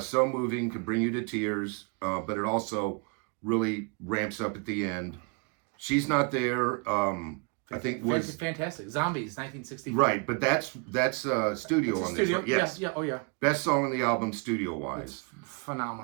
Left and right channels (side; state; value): left; quieter; 33.1 dB